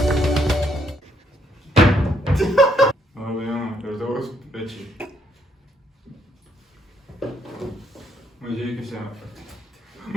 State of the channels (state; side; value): normal; both; correlation 0.73